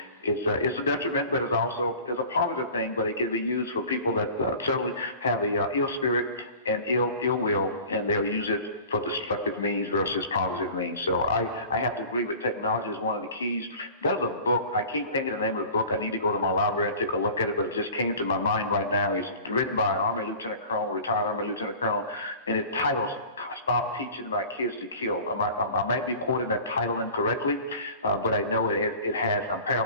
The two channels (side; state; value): both; inverted; correlation -0.42